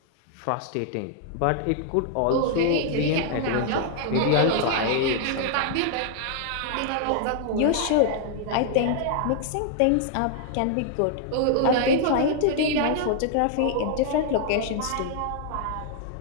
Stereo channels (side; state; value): both; different; correlation 0.00